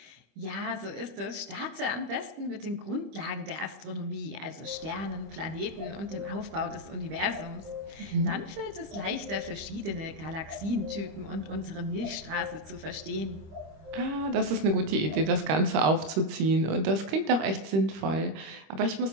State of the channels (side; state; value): left; late; 25 ms